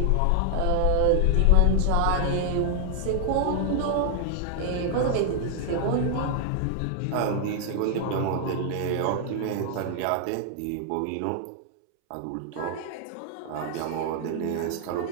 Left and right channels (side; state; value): both; different; correlation 0.00